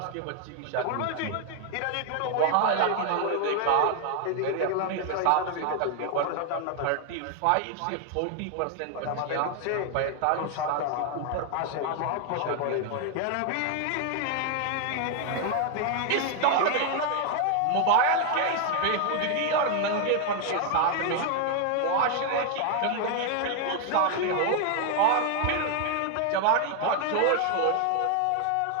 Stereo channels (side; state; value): both; different; correlation 0.00